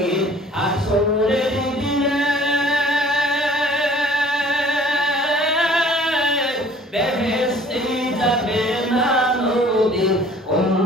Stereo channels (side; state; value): both; normal; correlation 0.52